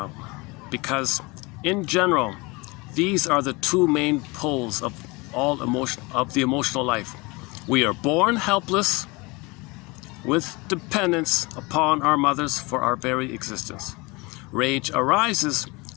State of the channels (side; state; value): right; quieter; 25.5 dB